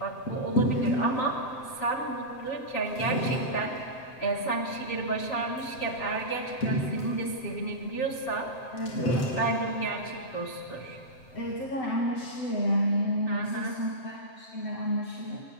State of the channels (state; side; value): late; right; 7.8 ms